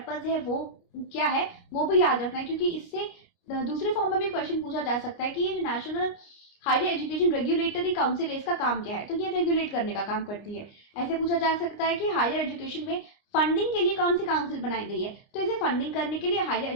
है, वो क्या है, वो भी याद रखना है। क्योंकि इससे दूसरे फॉर्म में भी क्वेश्चन पूछा जा सकता है कि ये national higher education regulatory council है, इसका काम क्या है? तो ये रेगुलेट करने का काम करती है। ऐसे पूछा जा सकता है कि हायर एजुकेशन में फंडिंग के लिए कौन सी काउंसिल बनाई गई है? तो इसे फंडिंग करने के लिए हायर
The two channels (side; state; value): right; late; 29 ms